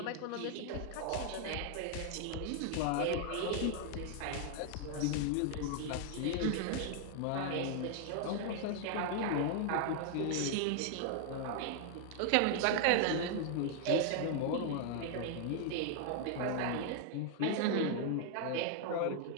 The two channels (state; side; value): different; both; correlation 0.00